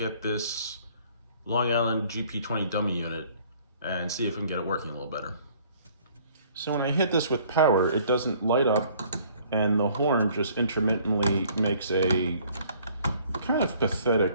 at this Long Island GP20 dummy unit and see if we can get it working a little better. So when I hit this with power, it doesn't light up and the horn just intermittently makes a kind of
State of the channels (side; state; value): both; inverted; correlation -0.57